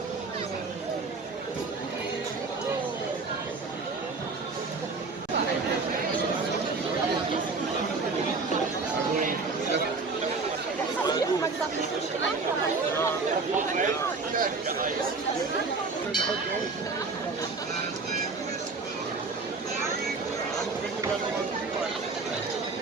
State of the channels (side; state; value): left; quieter; 4.1 dB